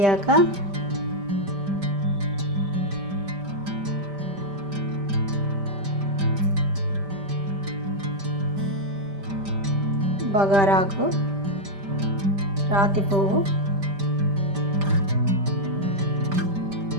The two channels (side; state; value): left; late; 5.1 ms